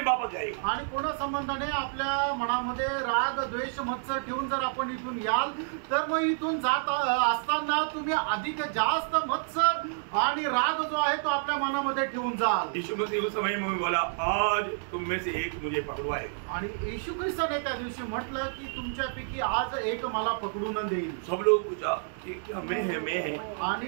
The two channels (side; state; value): left; silent; digital silence